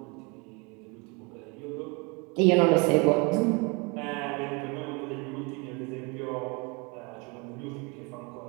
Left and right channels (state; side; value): quieter; left; 30.1 dB